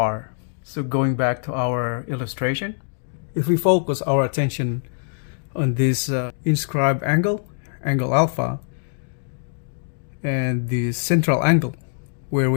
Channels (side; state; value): right; silent; digital silence